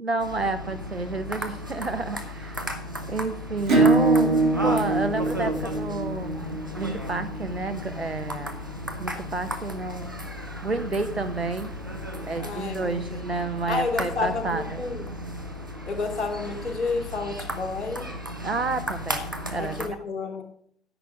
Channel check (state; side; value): normal; both; correlation 0.40